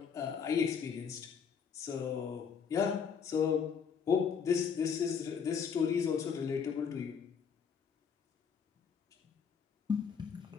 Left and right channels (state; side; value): quieter; right; 6.6 dB